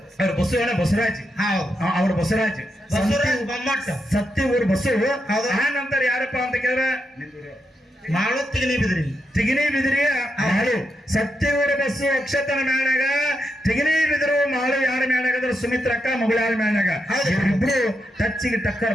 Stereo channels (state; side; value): normal; both; correlation 0.83